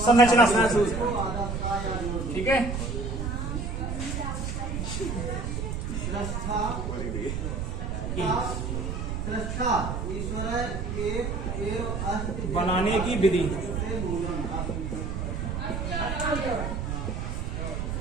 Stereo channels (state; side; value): noise; right; rumble, 3 dB below the sound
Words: संरचना सूत्र। ठीक है, बनाने की विधि।